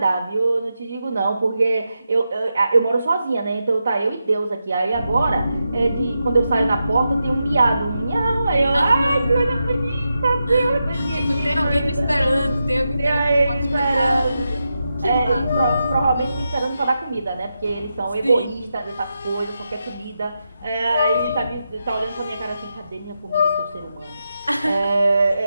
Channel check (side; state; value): both; inverted; correlation -0.88